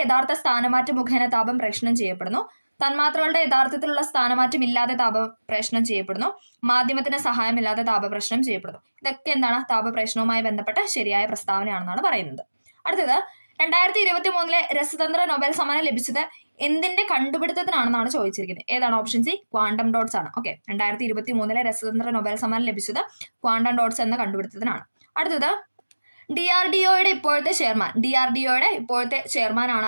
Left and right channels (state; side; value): inverted; both; correlation -1.00